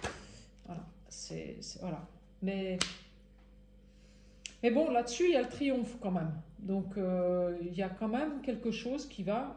Voilà, voilà. Mais bon, là-dessus, il y a le triomphe quand même. Donc, il y a quand même quelque chose qui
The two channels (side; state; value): both; identical; correlation 1.00